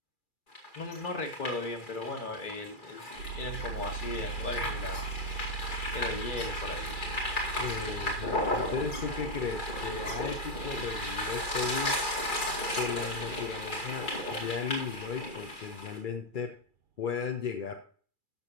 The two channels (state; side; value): late; right; 2.3 ms